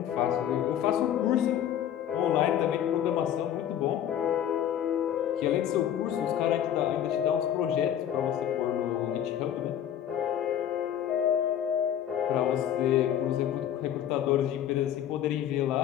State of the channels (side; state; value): right; quieter; 10.3 dB